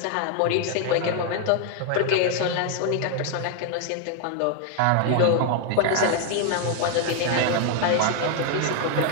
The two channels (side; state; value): both; different; correlation 0.00